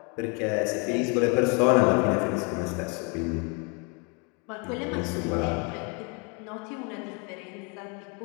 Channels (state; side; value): quieter; right; 34.0 dB